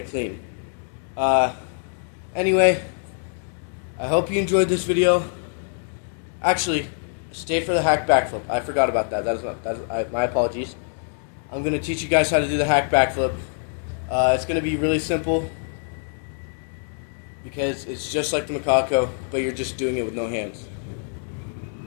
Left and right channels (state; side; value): silent; right; 62 dB below the other